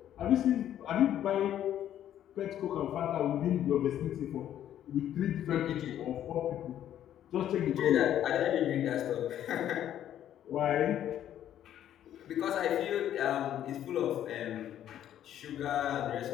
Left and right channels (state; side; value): quieter; right; 11.1 dB